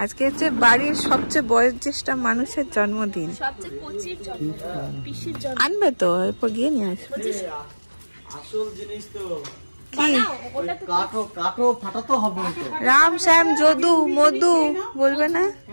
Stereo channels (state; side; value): inverted; both; correlation -1.00